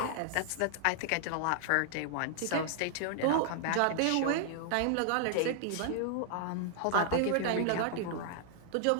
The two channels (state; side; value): different; both; correlation -0.01